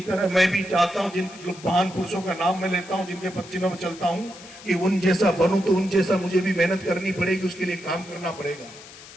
तरह मैं भी चाहता हूं, जिन महान पुरुषों का नाम मैं लेता हूं, जिनके पदचिन्हों में चलता हूं, कि उन जैसा बनूं तो उन जैसा मुझे भी मेहनत करनी पड़ेगी, उसके लिए काम करना पड़ेगा,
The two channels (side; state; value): left; noise; hiss, 18 dB below the sound